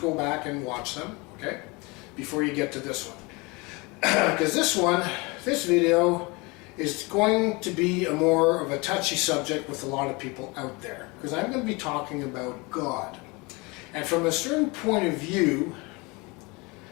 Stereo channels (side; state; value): right; quieter; 26.5 dB